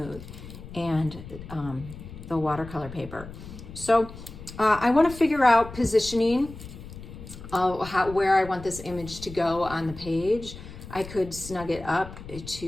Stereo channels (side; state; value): left; noise; rumble, 14 dB below the sound